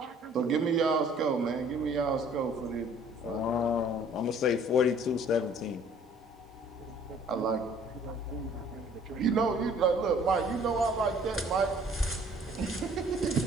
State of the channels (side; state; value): both; normal; correlation 0.56